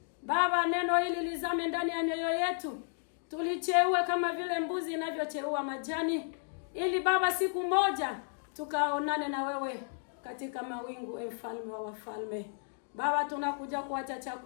Baba, neno hili lizame ndani ya mioyo yetu. Tulicheue kama vile mbuzi inavyocheua majani, ili Baba siku moja tukaonane na wewe katika mawingu, mfalme wa wafalme. Baba, tunakuja kuacha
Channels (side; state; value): right; silent; digital silence